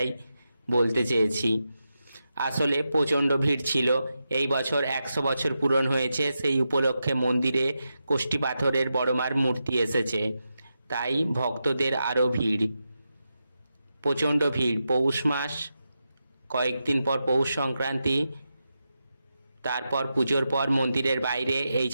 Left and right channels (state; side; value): inverted; both; correlation -0.88